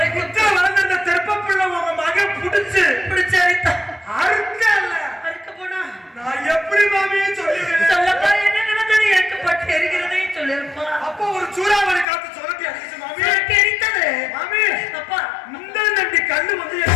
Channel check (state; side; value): drops out; right; at 12.1 s